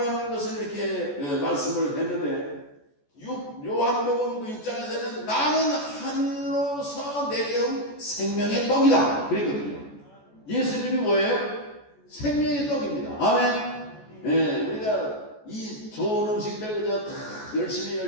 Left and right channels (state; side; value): late; right; 14 ms